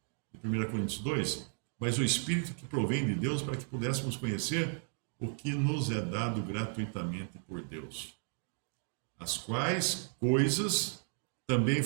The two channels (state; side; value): silent; left; 55 dB below the other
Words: de 1 Coríntios 2, mas o Espírito que provém de Deus para que pudéssemos conhecer o que nos é dado gratuitamente por Deus. As quais coisas também